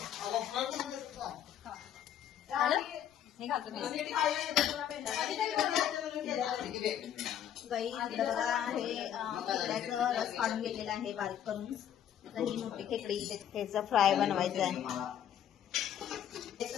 गाई बघा हे खेकड्याचं रस काढून घेतलेला आहे बारीक करून. ही मोठी खेकडी त्याचं फ्राय बनवायचं आहे.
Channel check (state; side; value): quieter; right; 10.0 dB